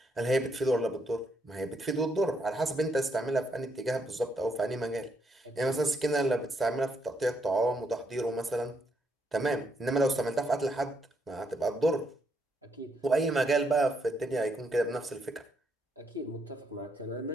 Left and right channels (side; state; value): both; normal; correlation 0.76